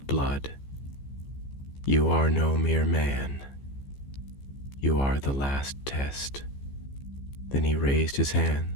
blood. You are no mere man. You are the last test." Then he raised his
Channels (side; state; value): right; late; 15 ms